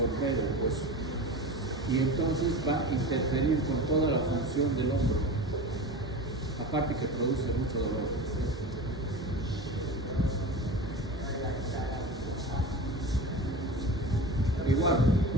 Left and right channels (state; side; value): normal; both; correlation 0.31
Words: el hueso. Y entonces va a interferir con toda la función del hombro, aparte que produce mucho dolor. Igual,